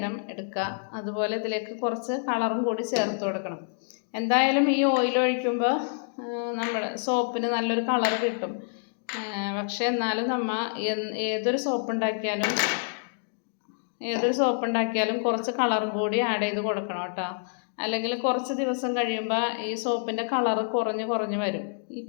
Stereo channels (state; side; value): silent; right; digital silence